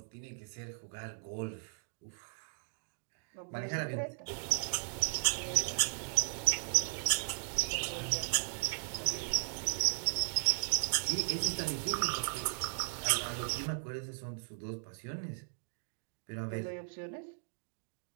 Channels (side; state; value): left; silent; digital silence